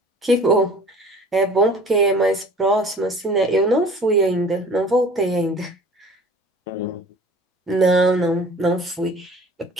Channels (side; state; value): both; normal; correlation 0.47